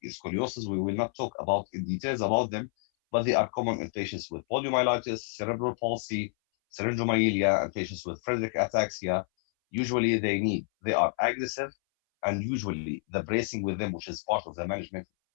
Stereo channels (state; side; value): silent; right; 58 dB below the other